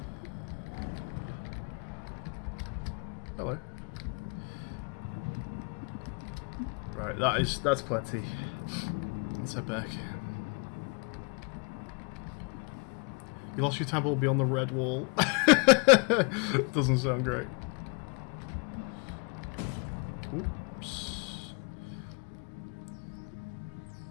Hello. Right, that's plenty. Let's head back. You lost your tab will be on the red wall. Doesn't sound great. Oops.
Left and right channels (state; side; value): quieter; right; 35.7 dB